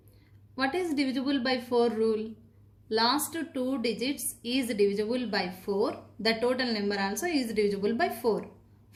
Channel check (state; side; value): identical; both; correlation 1.00